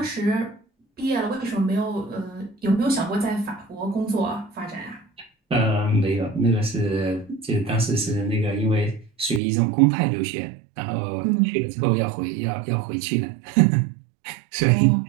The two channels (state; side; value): drops out; left; at 9.4 s